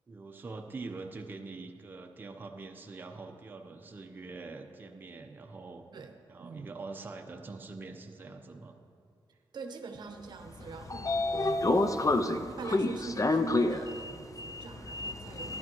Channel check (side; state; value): both; normal; correlation 0.75